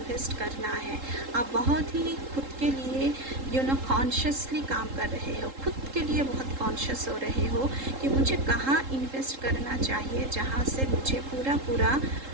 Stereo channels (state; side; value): late; left; 3.7 ms